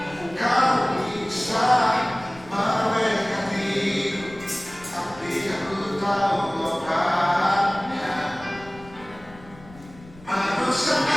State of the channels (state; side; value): noise; left; rumble, 21 dB below the sound